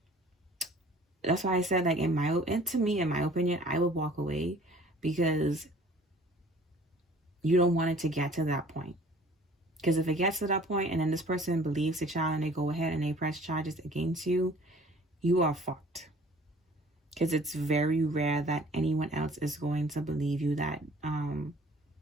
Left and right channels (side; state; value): both; normal; correlation 0.51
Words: that's why I said, like, in my opinion, I would walk away, because you don't want it to get to that point. Because if it gets to that point and then this person believes the child and they go ahead and they press charges against you, you are fucked. Because it's very rare that anyone else is going to believe you that